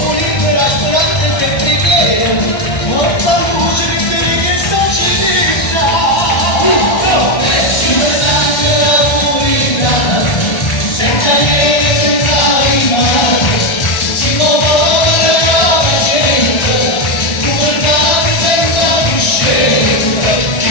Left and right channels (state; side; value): late; right; 1.3 ms